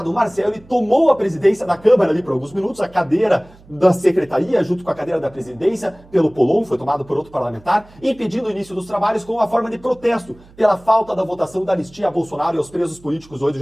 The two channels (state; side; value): noise; right; hum, 25 dB below the sound